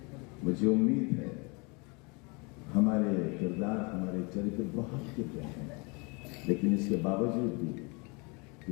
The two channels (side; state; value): right; quieter; 29.9 dB